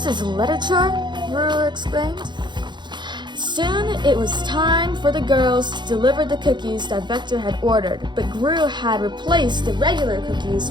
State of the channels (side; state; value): left; late; 0.22 ms